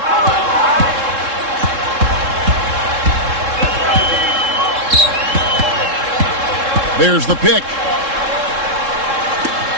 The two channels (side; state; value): left; late; 3.7 ms